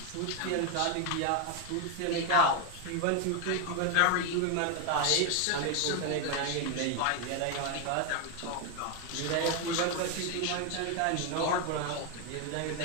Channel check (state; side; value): different; both; correlation 0.01